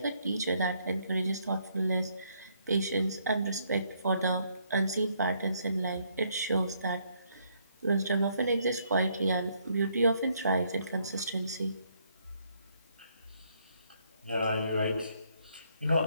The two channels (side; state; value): both; inverted; correlation -0.71